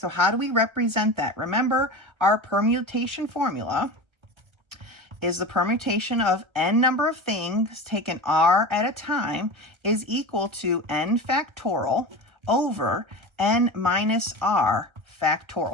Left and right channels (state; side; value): late; left; 1.3 ms